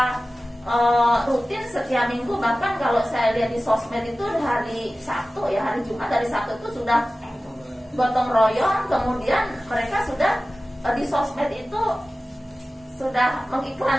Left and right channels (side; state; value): both; normal; correlation 0.96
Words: rutin setiap minggu, bahkan kalau saya lihat di sosmed itu hari Sabtu ya, hari Jumat dari Sabtu itu sudah gotong royong, kemudian mereka sudah di sosmed itu sudah